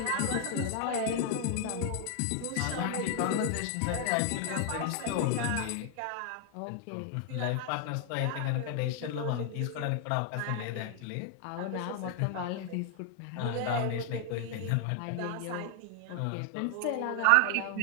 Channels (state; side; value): different; both; correlation 0.00